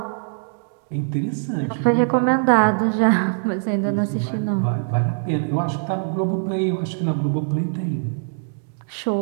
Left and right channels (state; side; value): silent; left; digital silence